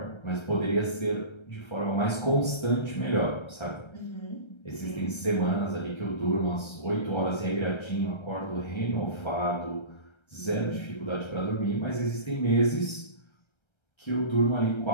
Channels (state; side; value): late; right; 1.3 ms